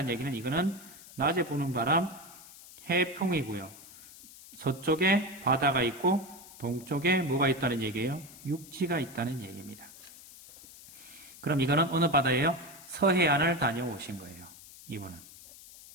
얘기는 이거는 낮에 부는 바람 해풍이고요. 서쪽에 바다가 있고 동쪽에 뭐가 있다는 얘기예요? 육지가 있다는 얘기입니다. 그럼 이거는 어느 바다예요? 서해안을 다녀오신 거예요. 이분은.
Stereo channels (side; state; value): left; noise; hiss, 19 dB below the sound